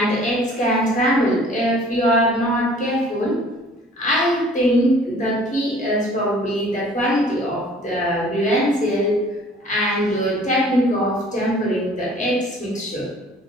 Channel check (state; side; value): normal; both; correlation 0.52